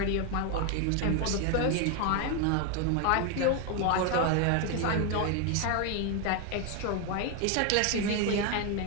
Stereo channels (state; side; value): different; both; correlation 0.01